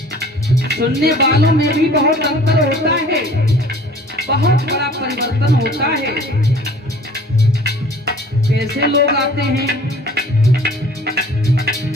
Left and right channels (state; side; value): normal; both; correlation 0.49